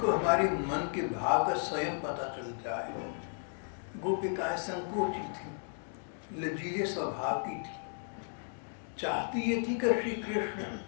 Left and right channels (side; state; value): right; silent; 55 dB below the other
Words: हमारे मन के भाव का स्वयं पता चल जाए। गोपिकाएं संकोची थी, लचीले स्वभाव की थी। चाहती ये थी कि श्री कृष्ण